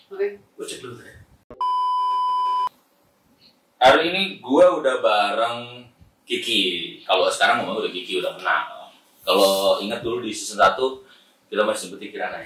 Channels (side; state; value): both; identical; correlation 1.00